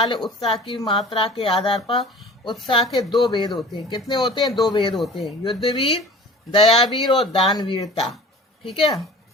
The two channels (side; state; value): both; normal; correlation 0.43